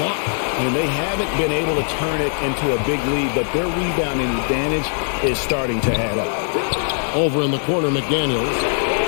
And they haven't been able to turn it into a big lead, but their rebounding advantage is starting to add up. Over in the corner, McDaniels.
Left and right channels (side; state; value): right; silent; 65 dB below the other